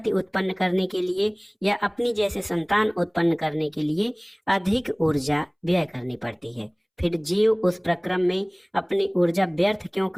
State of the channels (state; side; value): identical; both; correlation 1.00